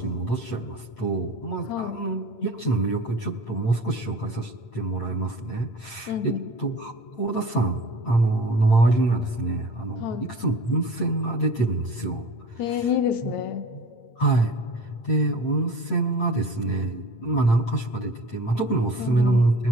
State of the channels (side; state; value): right; late; 8.8 ms